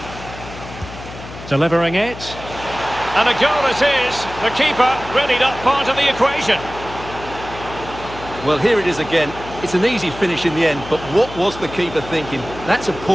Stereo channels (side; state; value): left; noise; hum, 14 dB below the sound